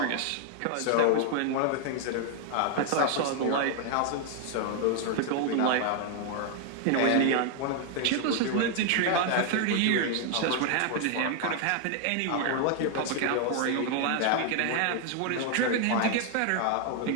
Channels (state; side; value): different; both; correlation 0.00